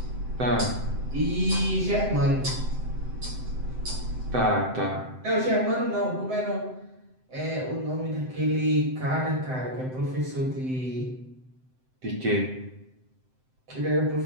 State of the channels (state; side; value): late; left; 7.8 ms